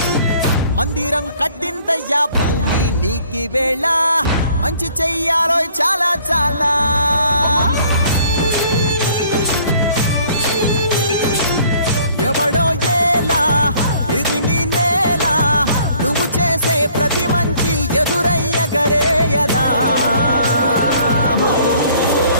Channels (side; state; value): both; inverted; correlation -0.57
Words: మందిరం కట్టిందయ్యా భూమి నీకి వేళ మంచి చెయ్యాలో చాలా చాలా ఎవడో ఏలా ఇది నీ నేల నువ్వు చేసే ప్రతి మంచి ఎదురయ్యగరేయదా